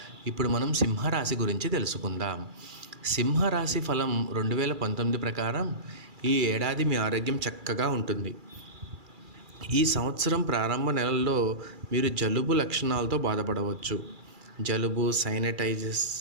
ఇప్పుడు మనం సింహరాశి గురించి తెలుసుకుందాం. సింహరాశి ఫలం 2019 ప్రకారం ఈ ఏడాది మీ ఆరోగ్యం చక్కగా ఉంటుంది. ఈ సంవత్సరం ప్రారంభ నెలల్లో మీరు జలుబు లక్షణాలతో బాధపడవచ్చు. జలుబు,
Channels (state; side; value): late; left; 2.4 ms